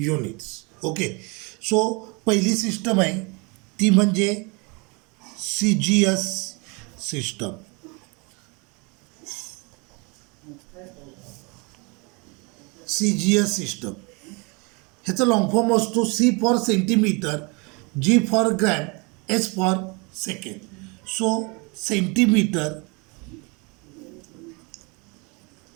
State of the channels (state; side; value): quieter; left; 29.6 dB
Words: Okay, so पहिली सिस्टम आहे ती म्हणजे CGS सिस्टम. CGS सिस्टम ह्याचा लॉंग फॉर्म असतो C for centimetre, G for gram, S for second. So centimetre,